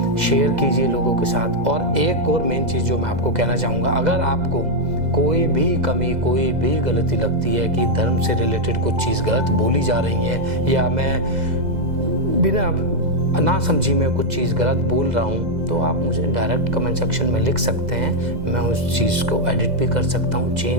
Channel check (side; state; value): left; late; 2.0 ms